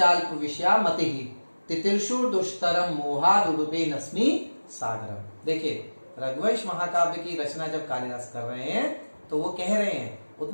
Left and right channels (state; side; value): inverted; both; correlation -1.00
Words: विषया मतिः तितिर्षु दुष्तरम मोहादुडुपे नस्मि सागरम। देखिए, रघुवंश महाकाव्य की रचना जब कालिदास कर रहे हैं तो वो कह रहे हैं